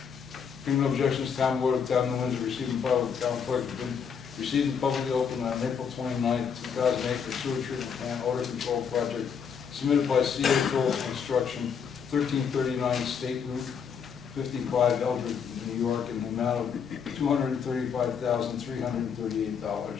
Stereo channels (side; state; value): right; quieter; 6.9 dB